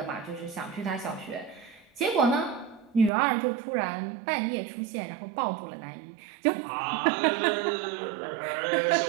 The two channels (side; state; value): left; drops out; at 3.1 s